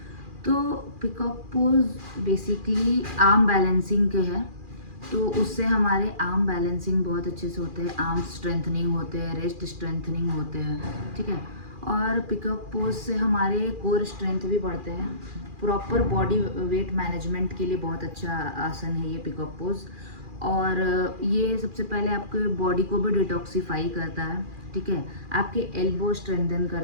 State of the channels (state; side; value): late; left; 2.4 ms